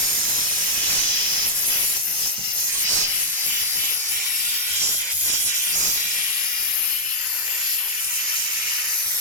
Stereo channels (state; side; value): normal; both; correlation -0.02